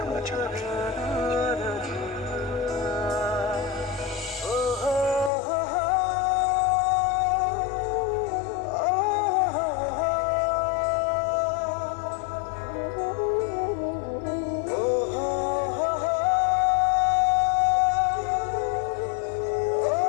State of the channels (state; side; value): drops out; right; at 5.3 s